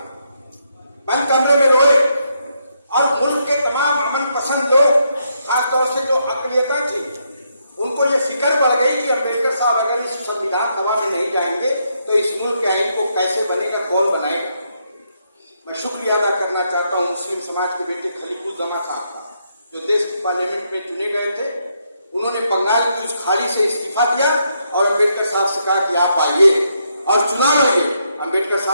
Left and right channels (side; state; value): both; inverted; correlation -0.78